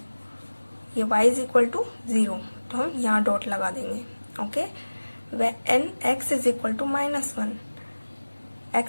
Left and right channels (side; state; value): both; inverted; correlation -1.00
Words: ये y इज इक्वल टू 0, तो हम यहाँ डॉट लगा देंगे। Okay, when x is equal to -1,